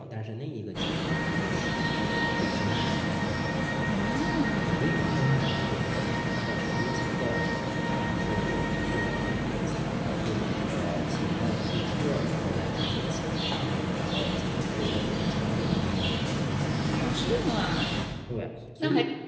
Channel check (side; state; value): both; identical; correlation 1.00